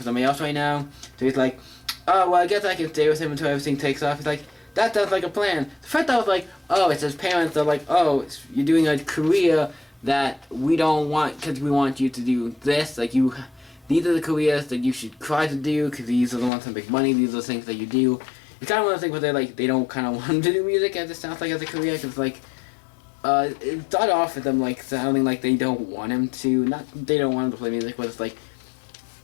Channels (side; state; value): right; drops out; at 16.5 s